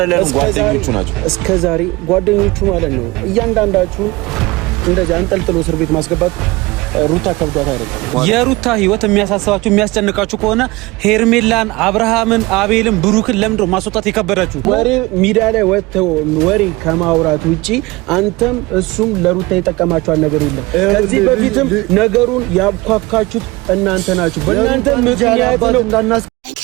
ጓደኞቹ ናቸው። እስከዛሬ ጓደኞቹ ማለት ነው። እያንዳንዳችሁ እንደዚህ አንጠልጥሎ እስር ቤት ማስገባት ሩታ ከብዷት አይደለም። የሩታ ህይወት የሚያሳስባችሁ የሚያስጨንቃችሁ ከሆነ ሄርሜላን፣ አብርሃምን፣ አቤልን፣ ብሩክን ለምንድነው ማስወጣት የከበዳችሁ? ወሬ ሚዲያ ላይ ወጥተው ወሬ ከማውራት ውጪ አንተም እሱም ለሩታ የጠቀማችኋል ነገር የለም። ከዚህ በፊትም ነገሩን ያብኳካችሁት እናንተ ናችሁ። በእናንተ ምክንያት ነው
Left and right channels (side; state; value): left; quieter; 22.1 dB